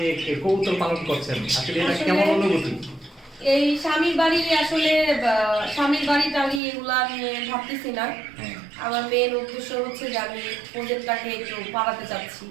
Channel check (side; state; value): left; drops out; at 6.6 s